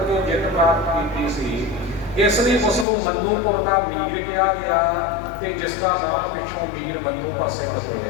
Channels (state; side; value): drops out; right; at 2.9 s